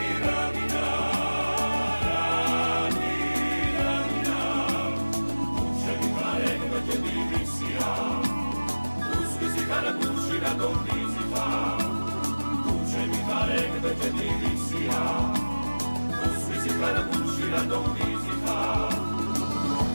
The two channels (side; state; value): both; inverted; correlation -1.00